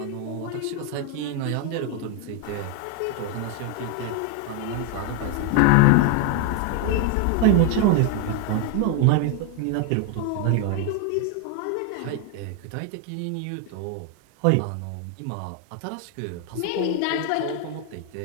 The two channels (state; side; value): different; both; correlation 0.01